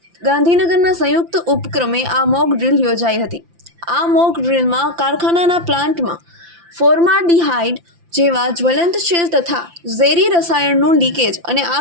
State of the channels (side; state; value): left; late; 5.9 ms